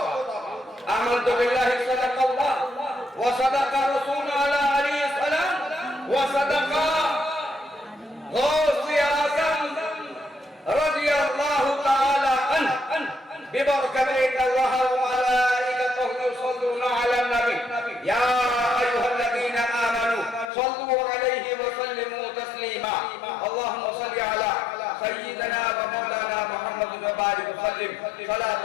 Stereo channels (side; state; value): right; drops out; at 20.5 s